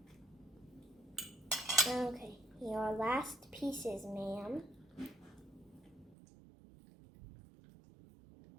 Okay, your last pieces, ma'am.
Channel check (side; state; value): left; drops out; at 6.2 s